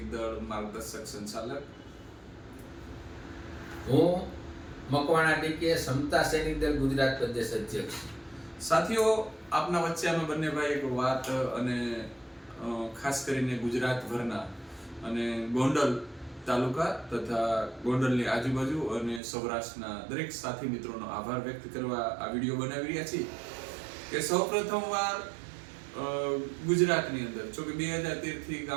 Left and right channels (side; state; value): left; drops out; at 19.2 s